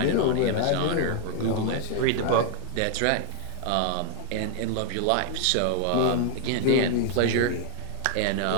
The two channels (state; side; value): different; both; correlation 0.00